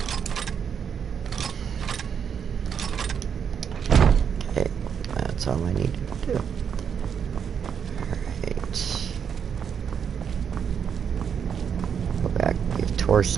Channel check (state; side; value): quieter; left; 7.4 dB